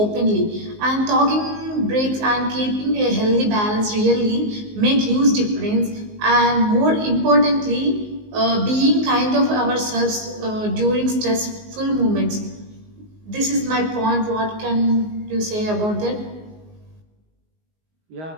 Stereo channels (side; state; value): left; late; 19 ms